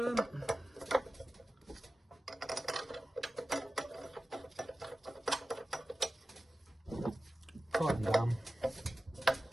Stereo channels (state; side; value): normal; both; correlation 0.95